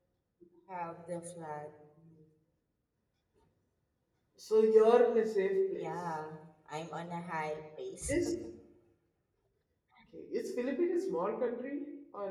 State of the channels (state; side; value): identical; both; correlation 1.00